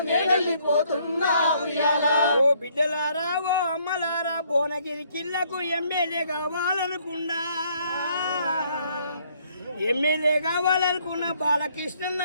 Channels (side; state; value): both; inverted; correlation -0.66